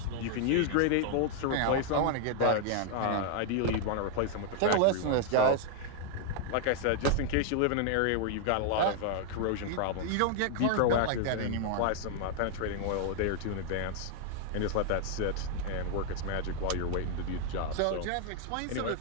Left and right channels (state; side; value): different; both; correlation 0.00